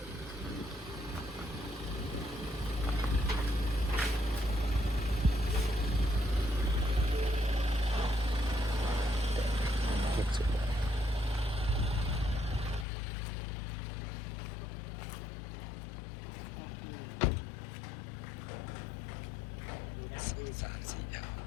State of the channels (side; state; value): right; drops out; at 12.9 s